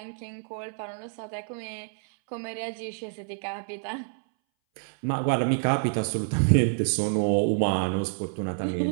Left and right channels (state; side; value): silent; left; 60 dB below the other